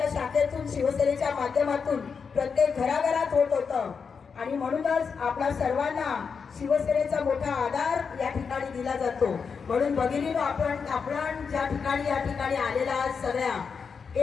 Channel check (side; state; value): right; quieter; 5.8 dB